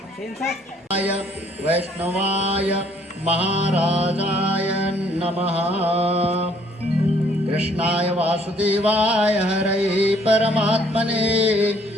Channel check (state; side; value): normal; both; correlation 0.63